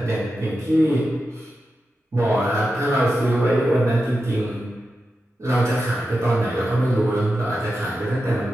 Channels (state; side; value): normal; both; correlation 0.90